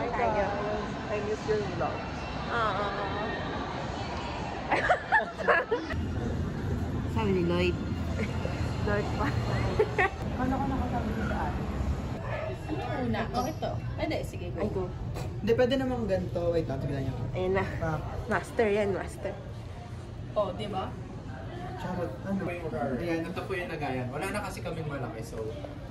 guys, I miss your vlog. Sabi ni Lloyd. Lloyd pa. Ano ka nakasabi sa akin? Una. Oh, ito. Pwede, sige. Ay, go. Hindi, pwede namang ganito. Wait lang, tignan niyo. Ayun na. Master yan, master. Oh, di ba? Charot, ano? Ayan. Ito po yung nagayan. Wala na kasi kaming malaki, so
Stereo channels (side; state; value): both; identical; correlation 1.00